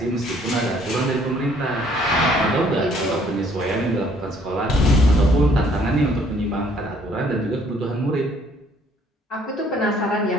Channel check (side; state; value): both; normal; correlation 0.62